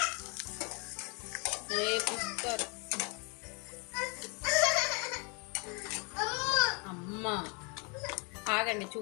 రేపు ఇస్తారు. అమ్మా ఆగండి,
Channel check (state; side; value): quieter; right; 33.0 dB